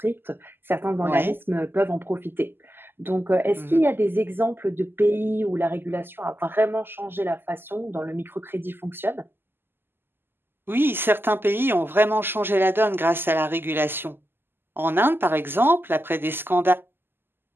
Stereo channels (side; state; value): left; late; 0.10 ms